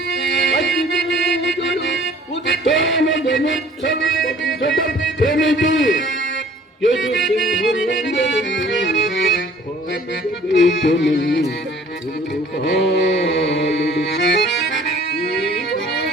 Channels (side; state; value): both; normal; correlation 0.53